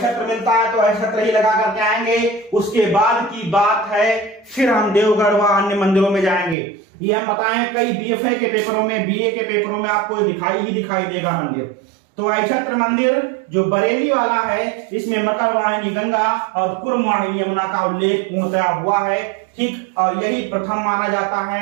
मिलता है तो अक्षत्र ही लगा करके आएंगे। उसके बाद की बात है फिर हम देवगढ़ व अन्य मंदिरों में जाएंगे। ये हम बताएं कई बीएफए के पेपरों में, बीए के पेपरों में आपको दिखाई देगा मंदिर, तो अहिछत्र मंदिर जो बरेली वाला है, इसमें मकर वाहिनी गंगा और कुर्म वाहिनी यमुना का उल्लेख पूर्णतया हुआ है। ठीक, और यही प्रथम माना जाता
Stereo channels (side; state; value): left; drops out; at 6.6 s